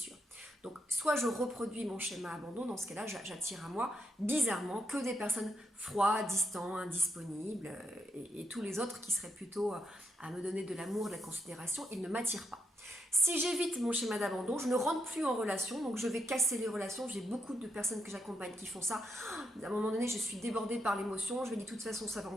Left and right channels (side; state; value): both; normal; correlation 0.81